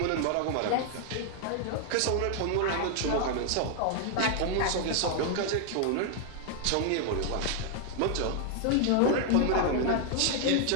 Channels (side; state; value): both; different; correlation 0.00